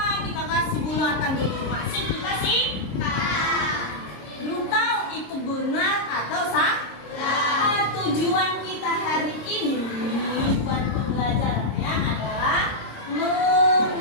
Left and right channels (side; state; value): right; late; 26 ms